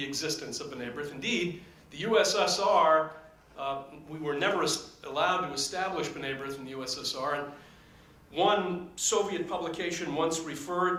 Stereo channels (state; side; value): identical; both; correlation 1.00